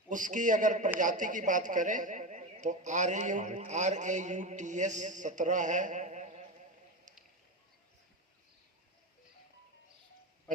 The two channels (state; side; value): normal; both; correlation 0.20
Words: उसकी अगर प्रजाति की बात करें तो RAUTS 17 है,